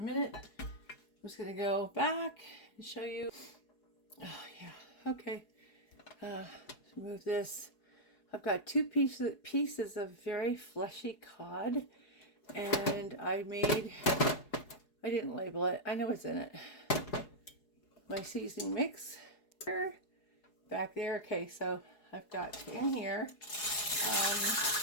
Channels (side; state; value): right; late; 4.8 ms